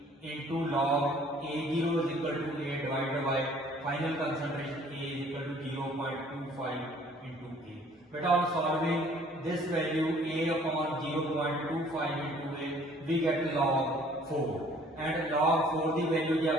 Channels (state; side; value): normal; both; correlation 0.56